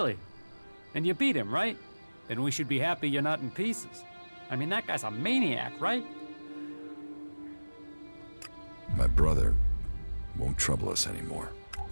And you beat him, right? Then we should be happy you're not in pieces. I mean, that guy's a maniac, right? My brother won't trouble us anymore.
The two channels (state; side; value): inverted; both; correlation -1.00